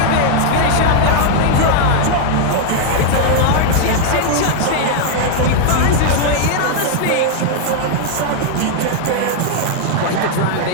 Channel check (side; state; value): both; different; correlation -0.01